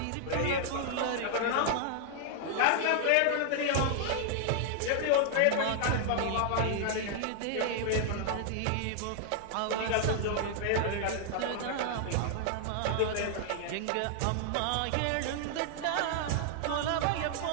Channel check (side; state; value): both; different; correlation 0.00